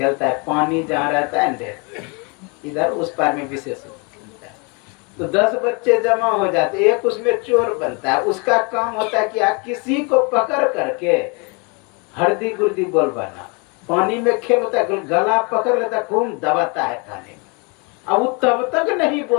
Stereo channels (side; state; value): right; quieter; 32.1 dB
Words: है, पानी जहाँ रहता है इधर उस पार में विशेष खेलता है, तो 10 बच्चे जमा हो जाते, एक उसमें चोर बनता है, उसका काम होता है कि किसी को पकड़ करके हरदी गुर्दी बोल बना। पानी में खेल होता है, गला पकड़ लेता है, खूब दबाता है पानी में। अब वो तब तक नहीं